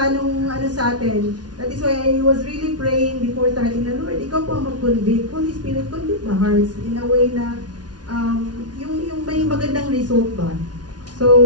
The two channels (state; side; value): late; left; 0.69 ms